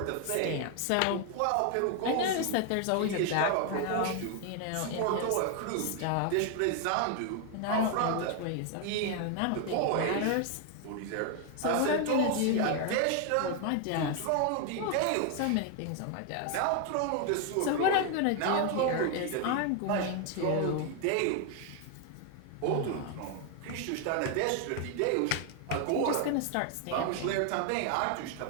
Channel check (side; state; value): both; different; correlation 0.00